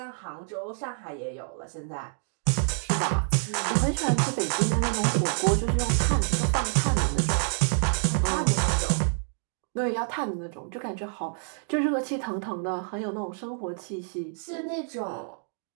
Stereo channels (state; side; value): silent; left; 60 dB below the other